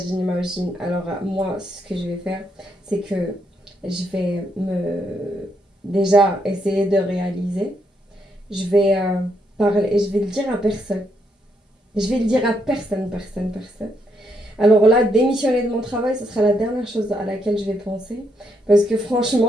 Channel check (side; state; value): both; normal; correlation 0.77